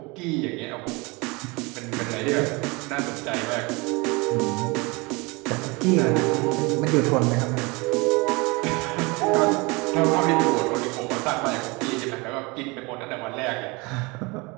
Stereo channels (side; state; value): left; quieter; 26.3 dB